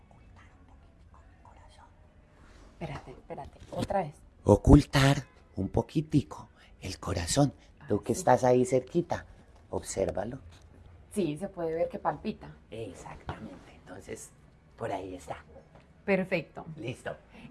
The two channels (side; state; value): both; identical; correlation 1.00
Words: un poquitico el corazón. Espérate, otra vez. Ocultar un poquitico el corazón. Tú que estás ahí cerquita, obsérvalo. Sí, se puede ver que palpita. Exactamente, entonces por ahí está. Perfecto. Listo.